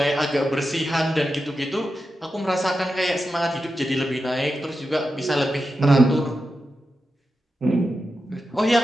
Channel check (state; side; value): normal; both; correlation 0.90